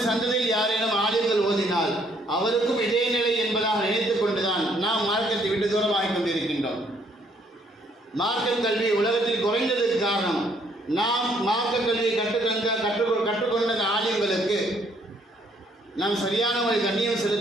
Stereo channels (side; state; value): both; normal; correlation 0.66